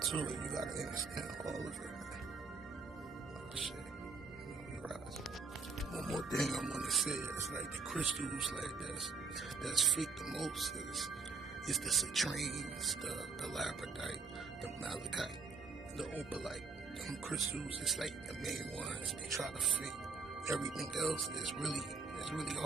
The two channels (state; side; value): quieter; left; 4.4 dB